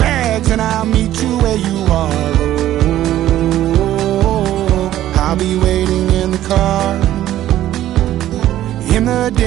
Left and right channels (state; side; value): quieter; left; 13.1 dB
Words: and I'll meet you where you are. Oh, I'll be waiting in the car in the